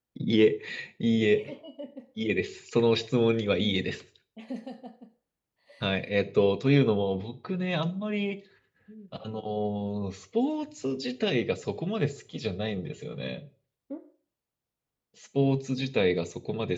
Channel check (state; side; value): identical; both; correlation 1.00